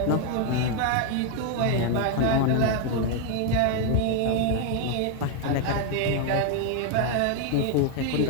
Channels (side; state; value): both; different; correlation 0.01